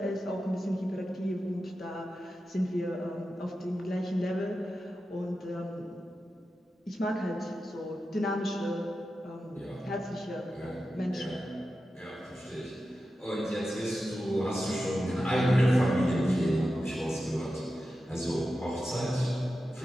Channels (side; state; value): both; normal; correlation 0.91